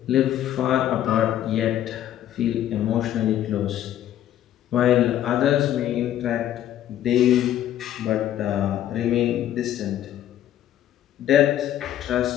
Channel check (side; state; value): right; quieter; 11.8 dB